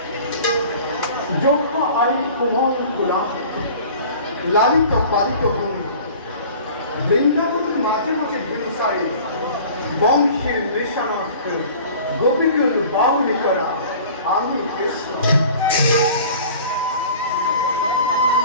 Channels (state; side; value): inverted; both; correlation -0.45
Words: যোগ্য আই কোমল কুলাঙ্ক লালিত পালিত হন বৃন্দাবনের মাঝে মাঝে হিংসায় বংশের নেশানাক্ত গোপীকুল বাউলি করা আমি কৃষ্ণ